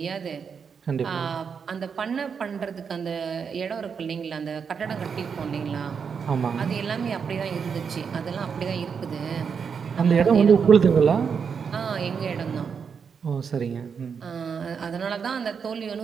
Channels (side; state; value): left; quieter; 6.4 dB